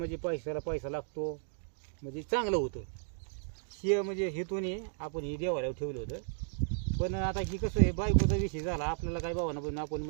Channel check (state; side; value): silent; left; digital silence